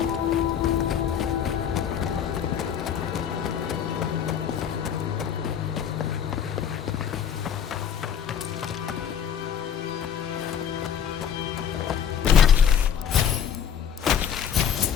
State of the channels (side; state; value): right; quieter; 8.4 dB